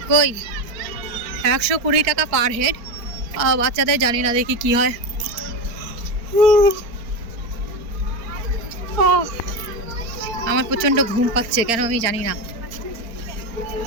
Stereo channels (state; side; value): late; left; 4.4 ms